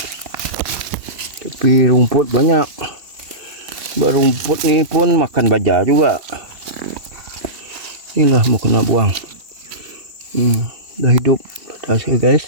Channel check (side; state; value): left; late; 2.6 ms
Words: Tapi rumput banyak. Rumput ni pun makan baja juga. Inilah mau kena buang. Dah hidup hasil guys.